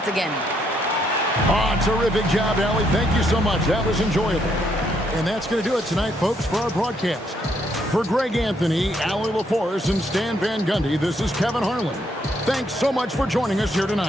again. Oh, terrific job, Allie. Thank you so much. That was enjoyable. And that's going to do it tonight, folks, for our broadcast. For Greg Anthony, Allie LaForce, and Stan Van Gundy, this is Kevin Harlan. Thanks so much for joining us here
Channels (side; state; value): both; normal; correlation 0.73